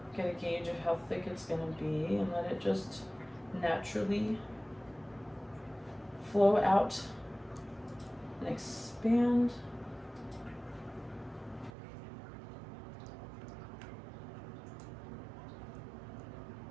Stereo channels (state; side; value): drops out; left; at 11.7 s